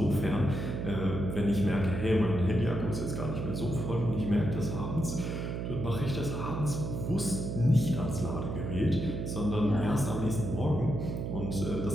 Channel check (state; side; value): noise; right; hum, 3 dB below the sound